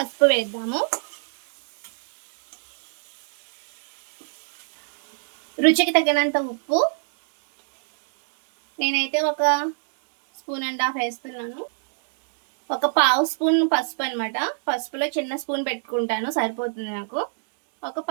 వేద్దాము. రుచికి తగినంత ఉప్పు. నేనైతే 1.5 స్పూన్ వేస్తున్నాను. 1/4 స్పూన్ పసుపు అనమాట. పసుపులో చిన్న స్పూన్ పెట్టుకుంటాను, సరిపోతుంది నాకు. ఒక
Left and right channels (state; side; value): silent; left; digital silence